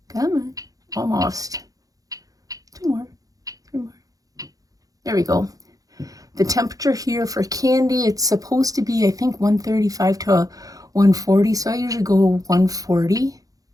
Come on. Almost. 2 more. 3 more. There we go. The temperature here for candy, it's supposed to be, I think, 135 to 140. So I usually go 140.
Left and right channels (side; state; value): left; late; 0.17 ms